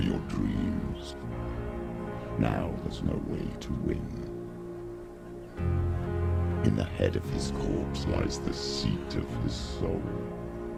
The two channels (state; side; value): identical; both; correlation 1.00